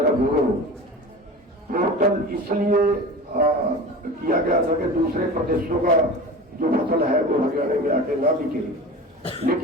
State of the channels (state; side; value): normal; both; correlation 0.33